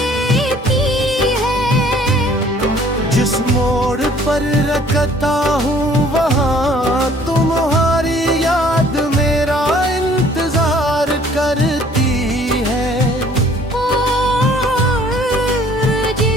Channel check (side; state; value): both; normal; correlation 0.56